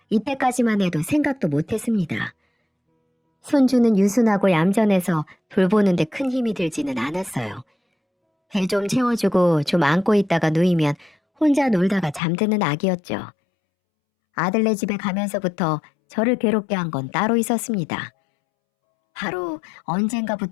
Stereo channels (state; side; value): drops out; right; at 12.2 s